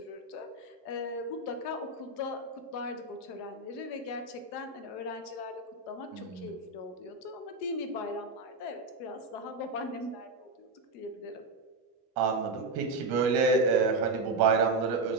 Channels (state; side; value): quieter; left; 3.3 dB